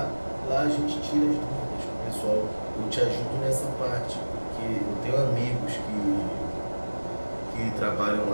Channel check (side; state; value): both; inverted; correlation -1.00